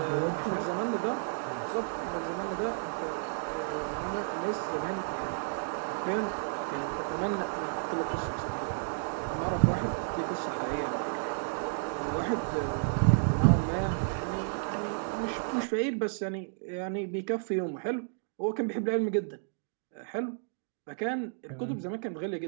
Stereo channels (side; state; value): left; silent; digital silence